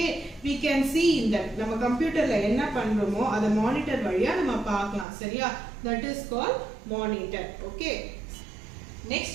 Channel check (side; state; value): left; drops out; at 5.1 s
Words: we can see in that நம்ம கம்ப்யூட்டர்ல என்ன பண்றோமோ அத monitor வழியா நம்ம பார்க்கலாம். சரியா? That is called monitor. Okay, next